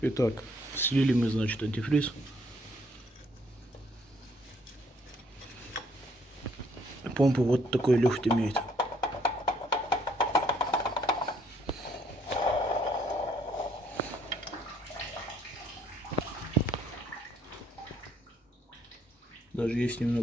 Итак, слили мы, значит, антифриз. Помпа вот такой люфт имеет. Даже есть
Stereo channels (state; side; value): normal; both; correlation 0.66